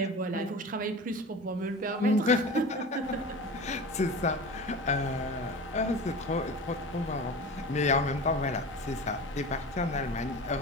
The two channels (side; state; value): both; normal; correlation 0.33